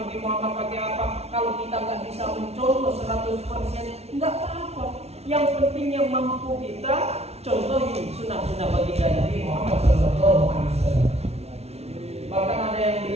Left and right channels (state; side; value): late; left; 0.31 ms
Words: Muhammad pakai apa, kalau kita nggak bisa mencontoh 100%, nggak apa-apa. Yang penting yang mampu kita contohi sunnah-sunnah baginda Nabi Muhammad SAW. Bahkan ada yang